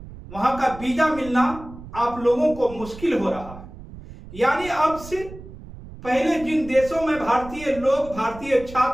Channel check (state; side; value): noise; right; rumble, 15 dB below the sound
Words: वहां का वीजा मिलना आप लोगों को मुश्किल हो रहा है। यानी अब से पहले जिन देशों में भारतीय लोग, भारतीय